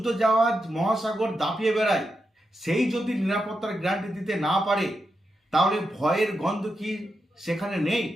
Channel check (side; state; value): both; normal; correlation 0.86